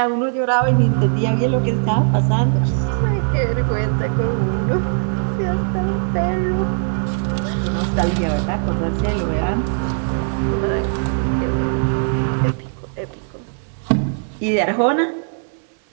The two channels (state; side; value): silent; left; 66 dB below the other